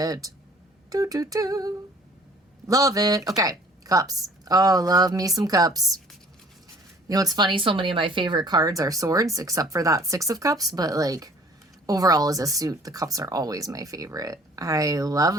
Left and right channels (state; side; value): normal; both; correlation 0.53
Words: Do, do, do. Love it. Okay, cups. Oh, love me some cups. You know, it's funny, so many of my favorite cards are swords, except for that 6 of cups, but like overall as a suit, the cups are always my favorite. I love